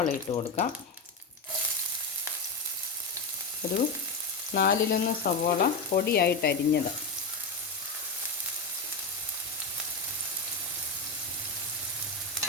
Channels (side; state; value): right; quieter; 3.5 dB